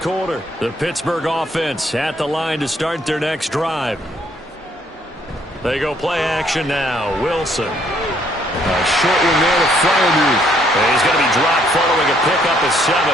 The Pittsburgh offense at the line to start their next drive. They go play action now. Wilson. A short one there to Freiermuth. He's going to be dropped following a pickup of 7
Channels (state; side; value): normal; both; correlation 0.67